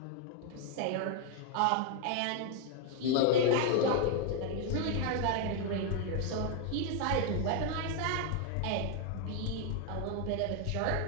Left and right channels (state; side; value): different; both; correlation 0.00